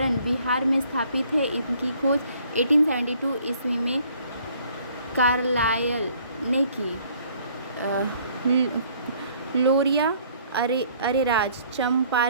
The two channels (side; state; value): both; inverted; correlation -0.60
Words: बिहार में स्थापित है। इनकी खोज 1872 ईस्वी में कार्लायल ने की। लोरिया अरेराज